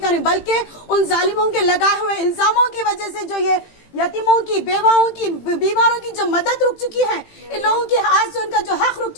रही, बल्कि उन जालिमों के लगाए हुए इल्जामों की वजह से जो ये यतीमों की, बेवाओं की, बीमारों की जो मदद रुक चुकी है, इन लोगों के आज से उनका जो हक रुक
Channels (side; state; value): right; late; 18 ms